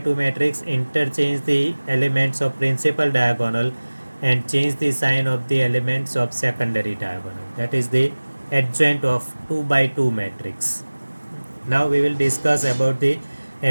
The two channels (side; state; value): both; inverted; correlation -1.00